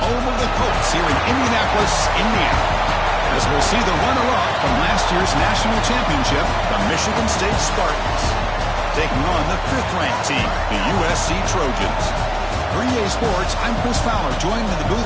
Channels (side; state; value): both; identical; correlation 1.00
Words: home of the Colts here in Indianapolis, Indiana. As we'll see the runner-up from last year's national championship, the Michigan State Spartans, taking on the 5th-ranked team, the USC Trojans. For EA Sports, I'm Chris Fowler, joined in the